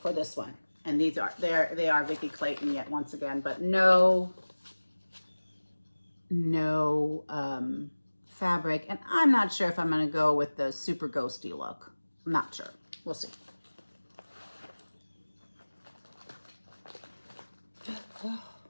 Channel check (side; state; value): both; inverted; correlation -1.00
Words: For this one. And these are, they are Vicky Clayton yet once again, but no fabric. And I'm not sure if I'm going to go with the super ghosty look. I'm not sure. We'll see.